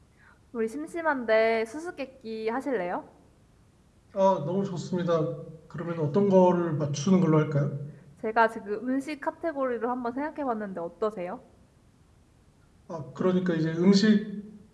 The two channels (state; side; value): identical; both; correlation 1.00